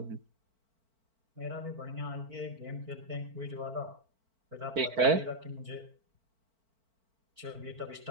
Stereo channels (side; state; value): left; late; 4.5 ms